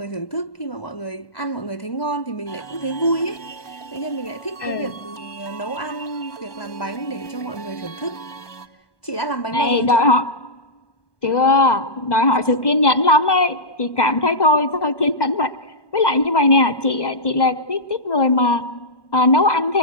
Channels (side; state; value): right; late; 1.2 ms